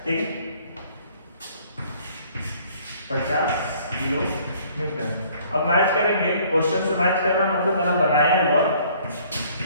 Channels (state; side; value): inverted; both; correlation -0.58